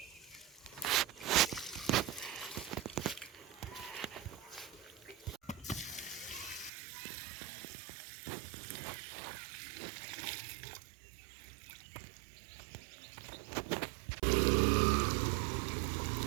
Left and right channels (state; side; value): drops out; left; at 6.7 s